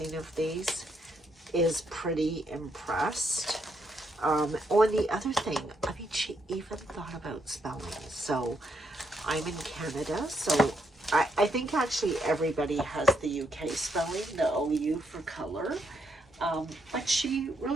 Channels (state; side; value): normal; both; correlation 0.76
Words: of these is pretty impressed. Oh, and the other thing, I mean, she even thought about spelling. So I'm in Canada, so I think actually everybody has the UK spelling, the OU for color. But she